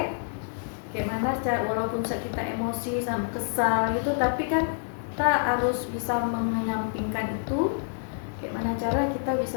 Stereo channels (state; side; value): silent; right; digital silence